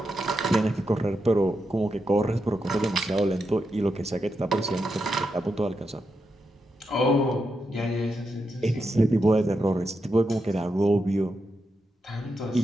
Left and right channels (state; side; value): normal; both; correlation 0.85